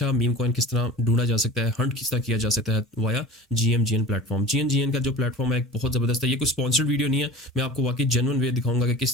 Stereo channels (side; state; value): both; normal; correlation 0.38